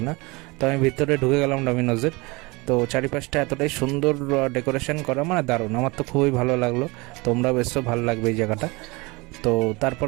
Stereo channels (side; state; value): left; quieter; 25.1 dB